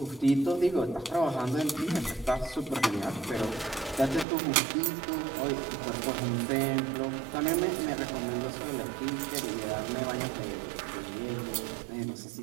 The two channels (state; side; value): drops out; left; at 4.2 s